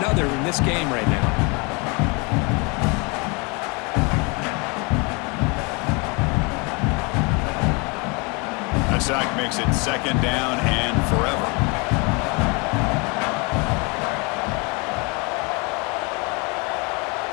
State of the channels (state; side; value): quieter; right; 30.3 dB